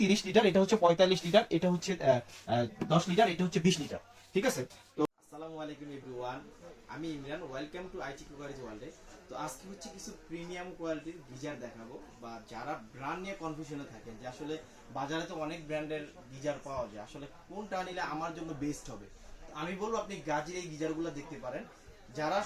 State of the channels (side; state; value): both; identical; correlation 1.00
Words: 30 লিটার, এটা হচ্ছে 45 লিটার, এটা হচ্ছে 10 লিটার, এটা হচ্ছে 20 লিটার। ঠিক আছে। তো আসসালামু আলাইকুম এভরিওয়ান, আমি Imran, welcome to IT cookeries ওয়ার্ল্ডে। তো আজকে হচ্ছে কিছু প্রিমিয়াম কোয়ালিটির গিজার দেখাবো, বা যারা ব্র্যান্ড নিয়ে কনফিউশনে থাকেন যে আসলে বাজারে তো অনেক ব্র্যান্ডের গিজার পাওয়া যায়, আসলে কোনটা নিলে আমার জন্য বেস্ট হবে, আমি বলবো আপনি গাজীর এই গিজারগুলো দেখতে পারেন। যারা